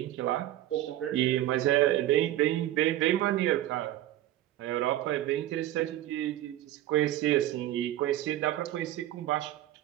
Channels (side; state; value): left; quieter; 13.7 dB